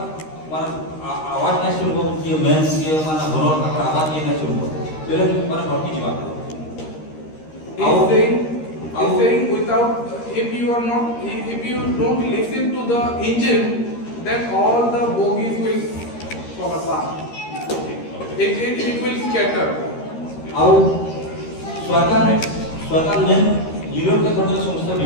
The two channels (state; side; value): late; right; 13 ms